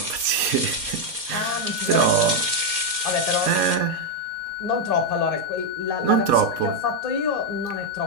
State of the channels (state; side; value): late; left; 4.2 ms